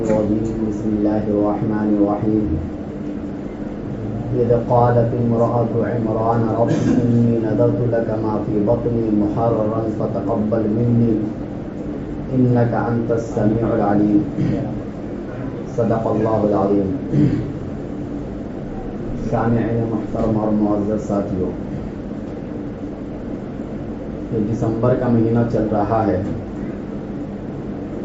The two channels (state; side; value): identical; both; correlation 1.00